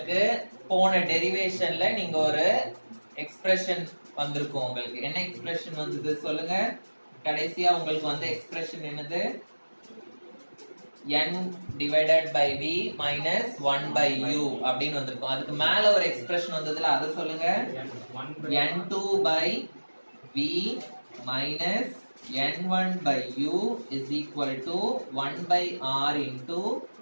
போன டெரிவேஷன்ல நீங்க ஒரு எக்ஸ்பிரஷன் வந்திருக்கும். உங்களுக்கு என்ன எக்ஸ்பிரஷன் வந்தது சொல்லுங்க? கடைசியா உங்களுக்கு வந்த எக்ஸ்பிரஷன் என்னது? n divided by v minus 1 by u அப்படின்னு வந்திருக்கும். அதுக்கு மேல ஒரு எக்ஸ்பிரஷன் வந்ததுல அதை சொல்லுங்க. n2 by v minus n1 by u is equal to 1 by r into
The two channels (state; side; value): inverted; both; correlation -1.00